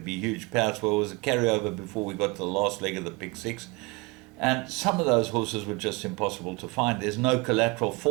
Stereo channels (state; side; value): quieter; left; 25.6 dB